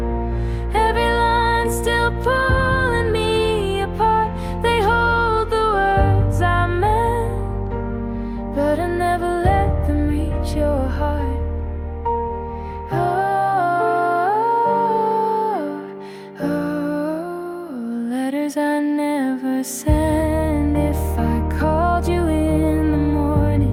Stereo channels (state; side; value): identical; both; correlation 1.00